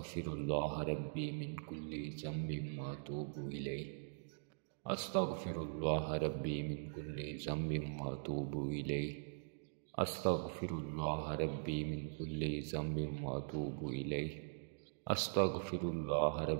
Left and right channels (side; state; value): left; silent; digital silence